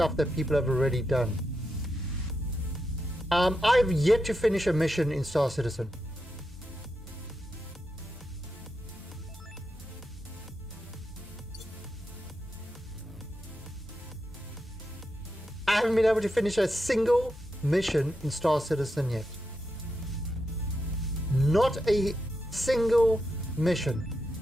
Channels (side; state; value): both; normal; correlation 0.86